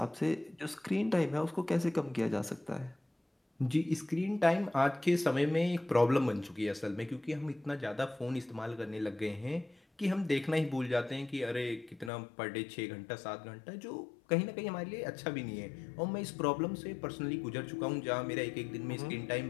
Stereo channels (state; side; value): drops out; right; at 12.1 s